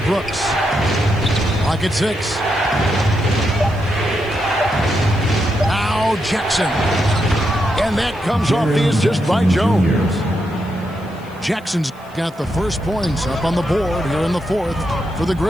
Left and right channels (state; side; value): noise; left; hiss, 29 dB below the sound